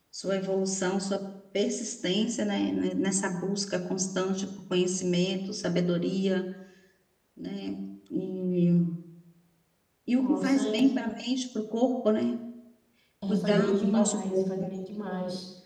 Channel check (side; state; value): both; identical; correlation 1.00